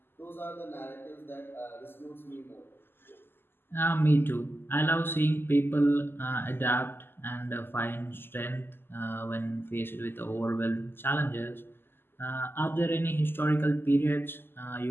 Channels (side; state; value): right; late; 0.10 ms